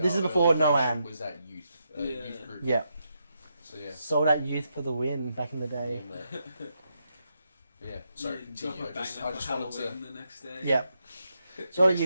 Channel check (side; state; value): both; inverted; correlation -0.82